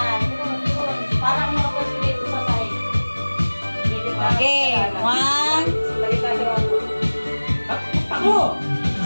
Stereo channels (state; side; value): inverted; both; correlation -1.00